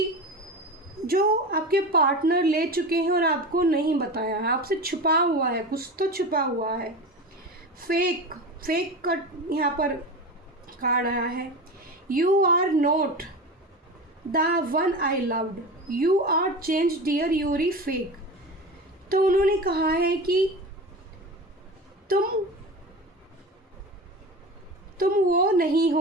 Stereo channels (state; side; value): normal; both; correlation 0.28